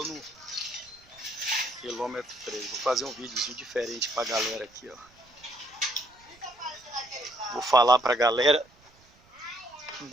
no quilômetro 3. Vou fazer um videozinho diferente pra galera aqui, ó. Vou falar pra galera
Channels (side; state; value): right; noise; rumble, 29 dB below the sound